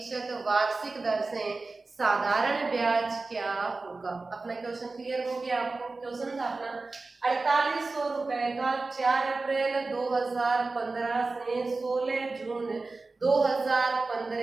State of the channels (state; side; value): quieter; left; 3.6 dB